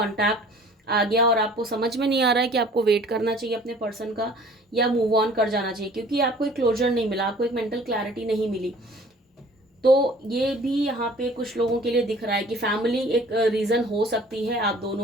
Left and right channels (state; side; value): normal; both; correlation 0.50